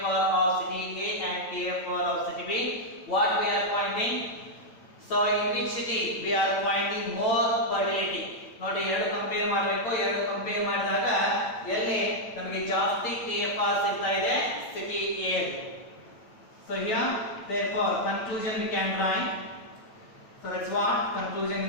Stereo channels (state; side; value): late; right; 9.0 ms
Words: of city A and TFR of city B. What we are finding? So in which city we are finding more fertility? ನೋಡಿ ಎರಡು compare ಮಾಡಬೇಕು. ಎರಡು compare ಮಾಡಿದಾಗ ಎಲ್ಲಿ ನಮಗೆ ಜಾಸ್ತಿ TFR ಸಿಗ್ತಾ ಇದೆ? City A. So here therefore conclusion we can write. So that's what conclusion